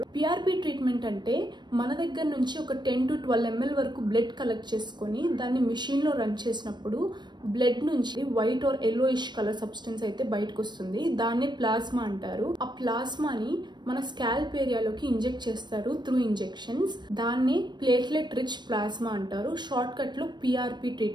పిఆర్పి ట్రీట్మెంట్ అంటే మన దగ్గర నుంచి ఒక 10 to 12 ml వరకు బ్లడ్ కలెక్ట్ చేసుకొని దాన్ని మిషన్లో రన్ చేసినప్పుడు బ్లడ్ నుంచి white or yellowish colour substance అయితే బయటకు వస్తుంది. దాన్నే ప్లాస్మా అంటారు. ఆ ప్లాస్మాని మన స్కాల్ప్ ఏరియాలోకి ఇంజెక్ట్ చేస్తారు త్రూ ఇంజెక్షన్స్. దాన్ని ప్లేట్లెట్ రిచ్ ప్లాస్మా అంటారు. షార్ట్ కట్ లో పిఆర్పి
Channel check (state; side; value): late; left; 0.21 ms